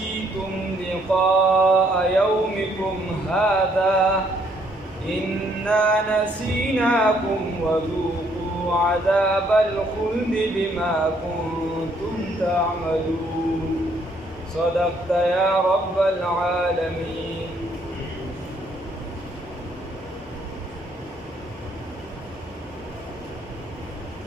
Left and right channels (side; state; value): both; normal; correlation 0.67